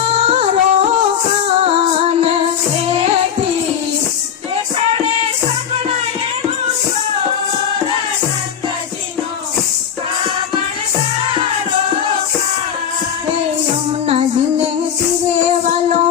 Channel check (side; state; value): right; quieter; 8.4 dB